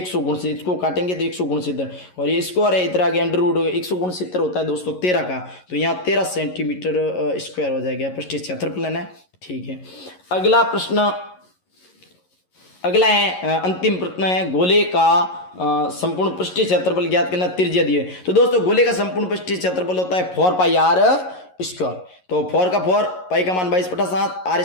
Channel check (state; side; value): late; right; 11 ms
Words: गुण से, इसको काटेंगे तो 100 गुण 70 और ये स्क्वायर है, इधर आगे अंडर रूट हो गया, 100 गुण 70 होता है दोस्तों 13 का, तो यहाँ 13 सेंटीमीटर स्क्वायर हो जाएगा पृष्ठीय क्षेत्रफल है। ठीक है, अगला है अंतिम प्रश्न है, गोले का संपूर्ण पृष्ठीय क्षेत्रफल ज्ञात करना, त्रिज्या दी है। तो दोस्तों गोले का संपूर्ण पृष्ठीय क्षेत्रफल होता है 4 पाई आर स्क्वायर। तो 4 का 4, पाई का मान 22 बटा 7, आर